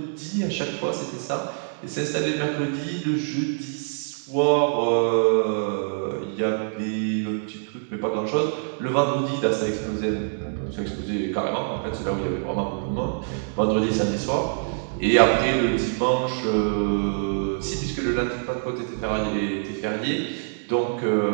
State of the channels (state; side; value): silent; left; digital silence